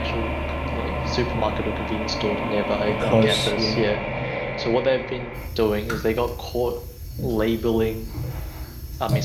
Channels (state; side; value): identical; both; correlation 1.00